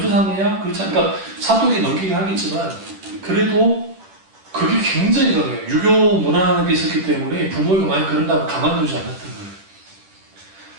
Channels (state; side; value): late; left; 10 ms